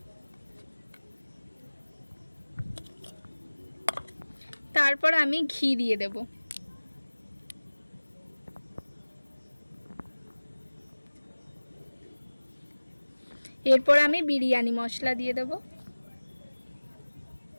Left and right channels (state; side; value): inverted; both; correlation -1.00